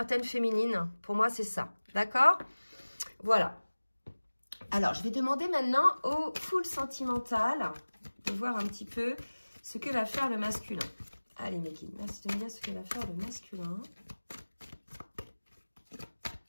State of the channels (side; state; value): both; inverted; correlation -1.00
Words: féminines, pour moi, c'est ça, d'accord? Voilà. Alors, je vais demander maintenant au full sentimental de voir un petit peu ce que va faire le masculin. Allez, mes guides, merci de me dire ce que va faire le masculin.